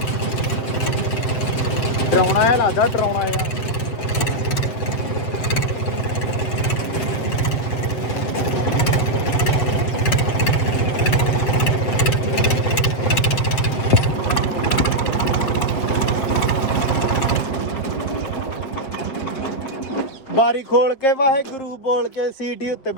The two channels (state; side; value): late; right; 7.8 ms